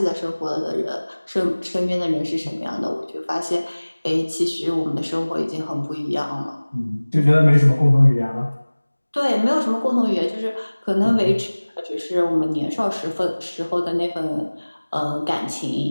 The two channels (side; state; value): both; inverted; correlation -1.00